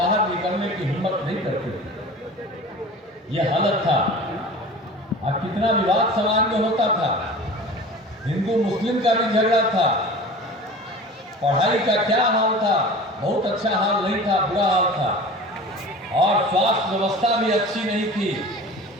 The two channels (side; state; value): both; normal; correlation 0.38